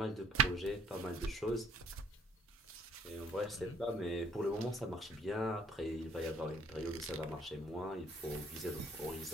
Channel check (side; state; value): both; normal; correlation 0.60